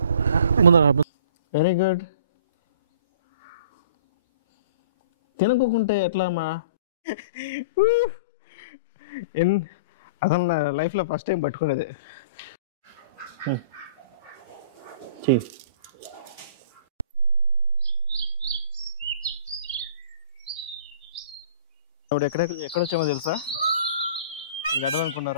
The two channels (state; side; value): inverted; both; correlation -0.47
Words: ముందర. Very good. తినకుంటే ఎట్లా అమ్మా? అసలు నా లైఫ్లో ఫస్ట్ టైం పట్టుకునేది. చెయ్యి. ఇప్పుడు ఎక్కడొచ్చామో తెలుసా?